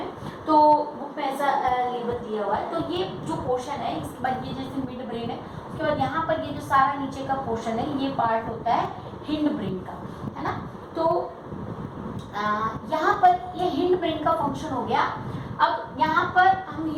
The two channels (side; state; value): both; identical; correlation 1.00